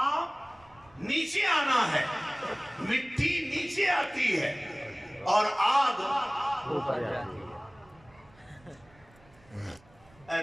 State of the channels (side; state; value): right; noise; rumble, 28 dB below the sound